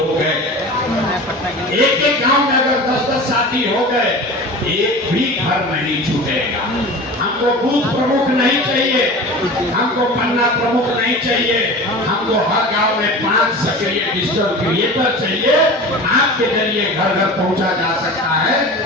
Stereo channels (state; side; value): normal; both; correlation 0.35